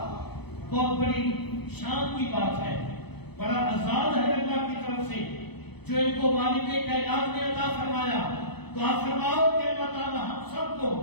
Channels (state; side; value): late; right; 0.98 ms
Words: بہت بڑی شان کی بات ہے, بڑا اعزاز ہے اللہ کی طرف سے جو ان کو مالک کائنات نے عطا فرمایا. دعا فرماؤ کہ اللہ تعالی ہم سب کو